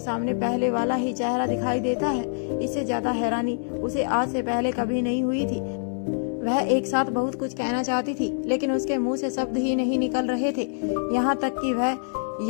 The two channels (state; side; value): silent; right; digital silence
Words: सामने पहले वाला ही चेहरा दिखाई देता है। इससे ज्यादा हैरानी उसे आज से पहले कभी नहीं हुई थी। वह एक साथ बहुत कुछ कहना चाहती थी, लेकिन उसके मुंह से शब्द ही नहीं निकल रहे थे। यहाँ तक कि वह